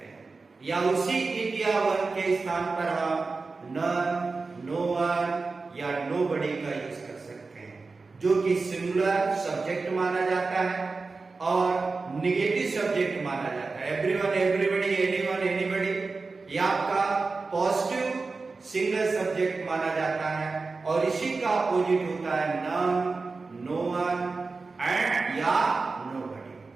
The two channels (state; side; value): quieter; left; 4.0 dB